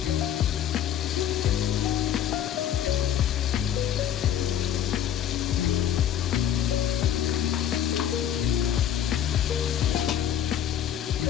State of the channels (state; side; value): quieter; right; 10.3 dB